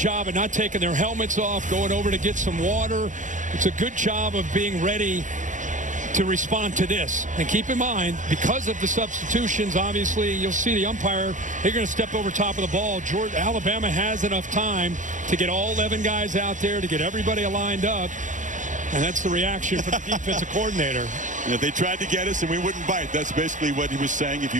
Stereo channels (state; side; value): late; left; 0.37 ms